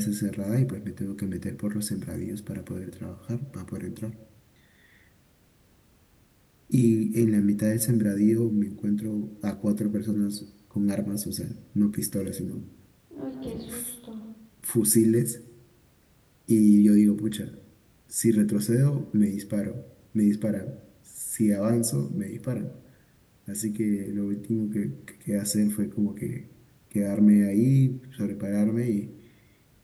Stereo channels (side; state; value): both; identical; correlation 1.00